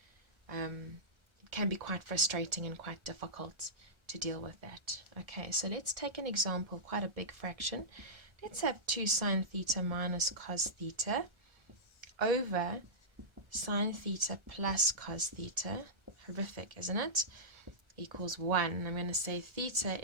it can be quite frustrating and quite difficult to deal with that. Okay, so let's take an example, quite a big fraction. Let's have 2 sine theta minus cos theta over sine theta plus cos theta. Horrific, isn't it? Equals 1. I'm going to say theta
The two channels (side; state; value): left; late; 1.3 ms